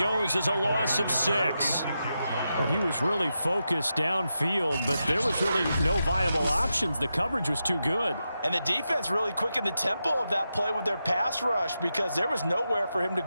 as a loss of 6. Well, he was really focused downfield, but there was really no viable options. The coverage was too good. And the defense really quickened the tempo of that play with their pass rush because there was nowhere for him to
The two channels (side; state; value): both; inverted; correlation -0.88